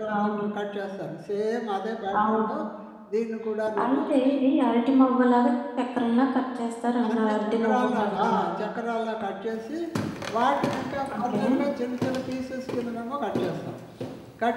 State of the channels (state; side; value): identical; both; correlation 1.00